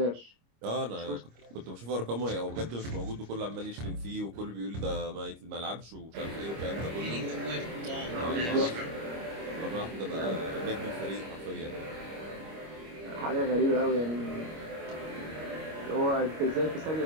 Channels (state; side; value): late; left; 25 ms